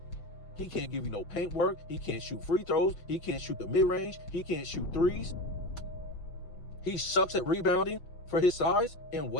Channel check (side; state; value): right; late; 5.9 ms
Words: He can't give you no paint work. He can't shoot free throws. He can't shoot the mid-range. He can't shoot threes. He sucks at rebounding for his size and